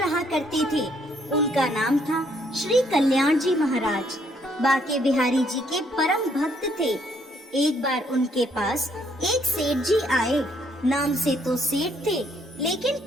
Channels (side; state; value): both; normal; correlation 0.69